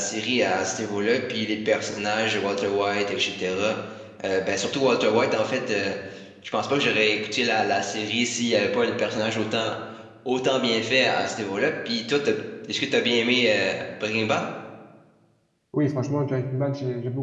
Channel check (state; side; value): identical; both; correlation 1.00